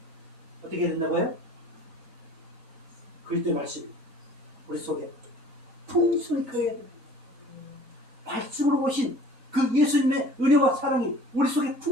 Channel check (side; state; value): both; normal; correlation 0.47